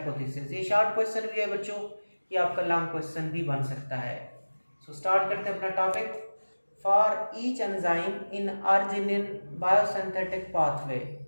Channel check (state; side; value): inverted; both; correlation -1.00